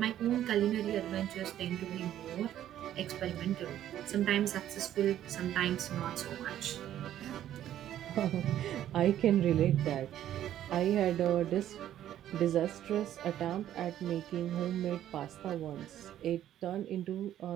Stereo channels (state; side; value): quieter; left; 11.7 dB